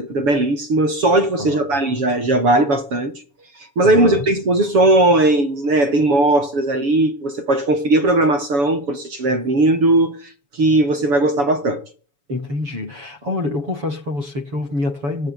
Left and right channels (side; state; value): left; late; 7.1 ms